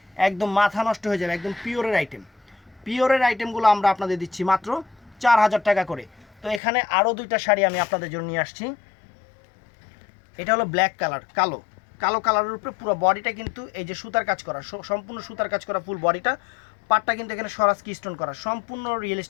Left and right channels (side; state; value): right; drops out; at 6.6 s